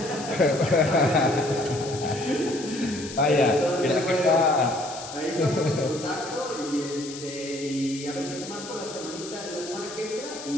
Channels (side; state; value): left; noise; hiss, 12 dB below the sound